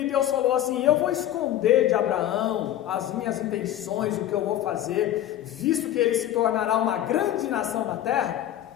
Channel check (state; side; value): quieter; right; 12.3 dB